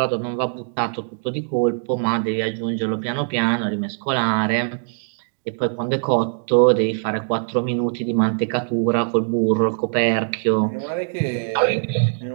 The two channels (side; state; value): left; silent; digital silence